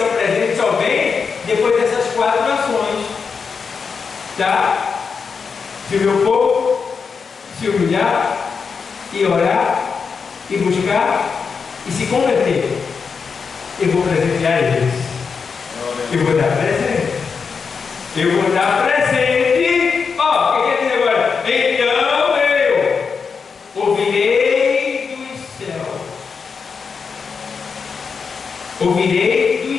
o presente só vem depois dessas 4 ações. Tá? Se o meu povo se humilhar e orar e buscar e se converter, eu vou presentear eles. Eu vou dar presente. Eu vou dar presente. Ó, o que quer dizer agora? Então eu ouvirei dos céus. Ouvirei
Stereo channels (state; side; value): quieter; right; 5.6 dB